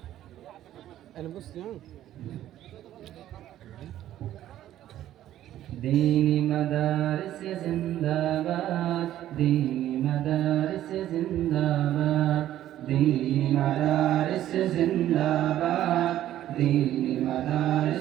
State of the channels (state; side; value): quieter; left; 12.6 dB